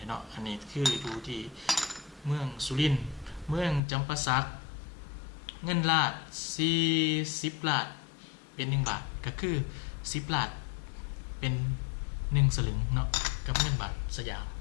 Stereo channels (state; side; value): drops out; right; at 3.8 s